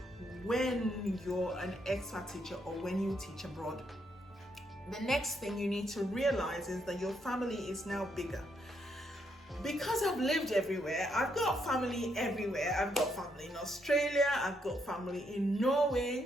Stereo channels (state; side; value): normal; both; correlation 0.76